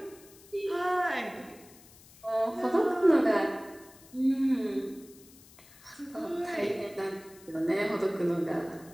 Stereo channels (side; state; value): left; noise; hiss, 23 dB below the sound